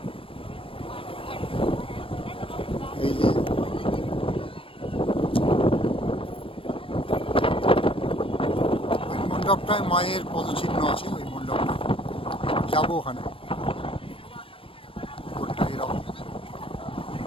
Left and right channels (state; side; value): late; right; 0.26 ms